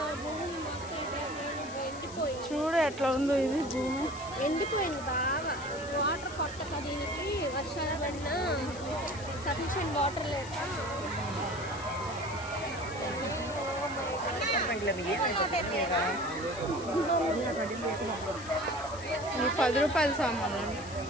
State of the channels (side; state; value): left; noise; hiss, 16 dB below the sound